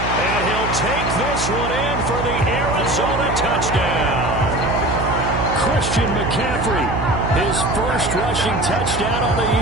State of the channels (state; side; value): noise; right; hum, 5 dB below the sound